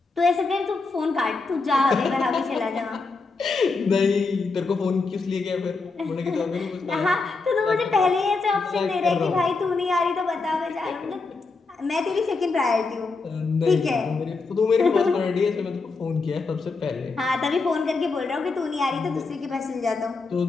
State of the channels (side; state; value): right; quieter; 4.1 dB